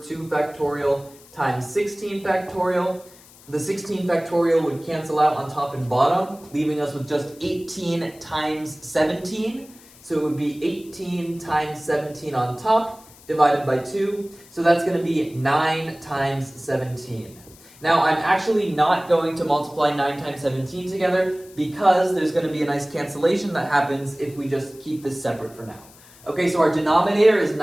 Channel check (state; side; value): noise; left; hiss, 24 dB below the sound